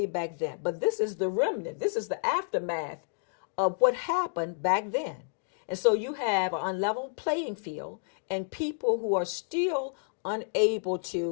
back then. But this is the remnant. This is the aftermath of what happened back then. And so you have an unlevel playing field, and people who are still unable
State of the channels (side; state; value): right; silent; digital silence